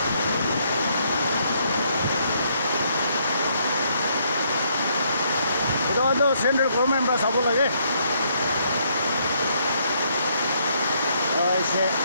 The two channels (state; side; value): inverted; both; correlation -0.71